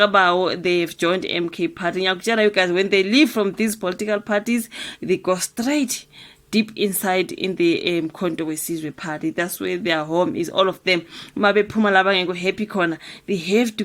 joined MK party. You guys, when they leave from these political parties, they go straight deep inside in the Umkhonto Wesizwe party. That's where their home is, all of them. Mabe Mpumalanga go happy corner. They have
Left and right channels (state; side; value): identical; both; correlation 1.00